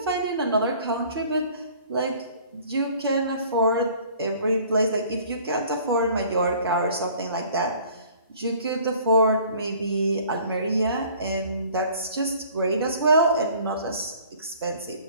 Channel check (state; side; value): inverted; both; correlation -0.52